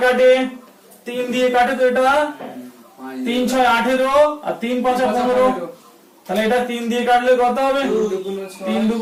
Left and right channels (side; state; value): both; identical; correlation 1.00